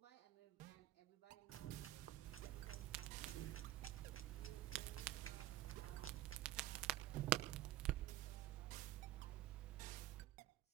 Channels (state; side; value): quieter; left; 14.7 dB